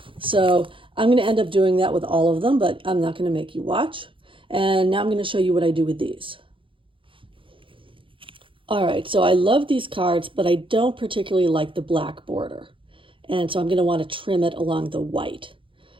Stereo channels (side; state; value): left; late; 0.25 ms